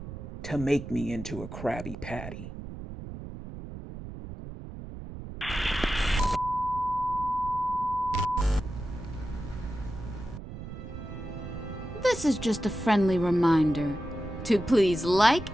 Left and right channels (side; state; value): right; noise; rumble, 10 dB below the sound